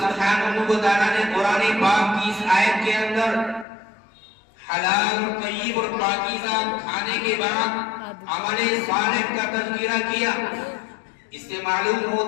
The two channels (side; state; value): right; drops out; at 3.7 s